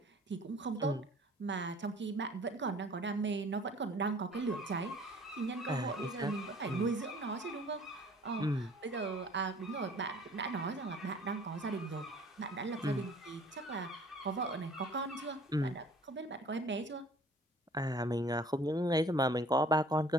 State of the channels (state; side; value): normal; both; correlation 0.52